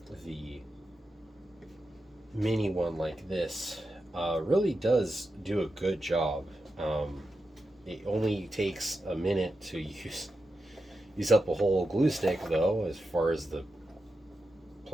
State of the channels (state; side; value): normal; both; correlation 0.89